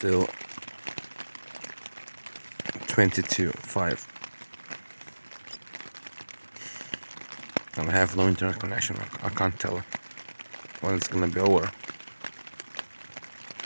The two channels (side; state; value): both; inverted; correlation -1.00